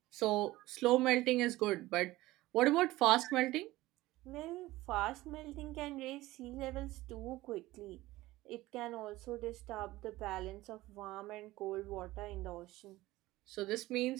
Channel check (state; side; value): quieter; left; 17.8 dB